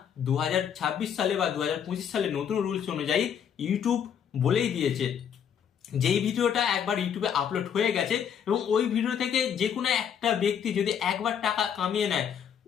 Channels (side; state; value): right; quieter; 8.3 dB